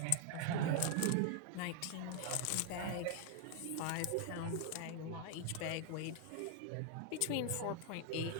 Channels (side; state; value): both; different; correlation 0.00